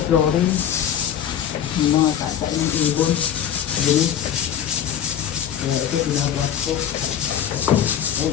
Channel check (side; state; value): right; quieter; 9.5 dB